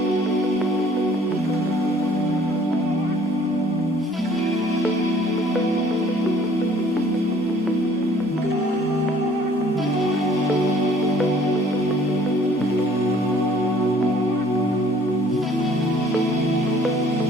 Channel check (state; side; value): normal; both; correlation 0.56